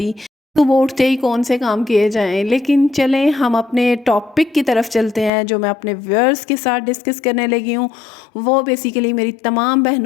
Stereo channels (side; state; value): right; drops out; at 5.3 s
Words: صبح اٹھتے ہی کون سے کام کیے جائیں۔ لیکن چلیں ہم اپنے ٹاپک کی طرف چلتے ہیں جو میں اپنے ویورز کے ساتھ ڈسکس کرنے لگی ہوں۔ وہ بیسیکلی میری تمام